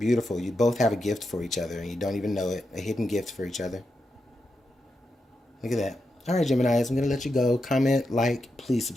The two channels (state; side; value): normal; both; correlation 0.86